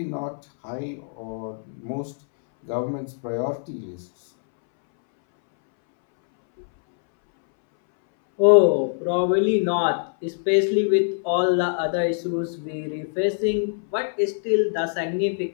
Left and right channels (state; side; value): silent; right; 63 dB below the other